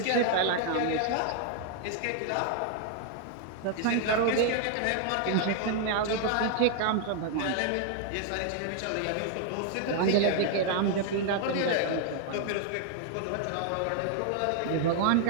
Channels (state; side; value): different; both; correlation 0.00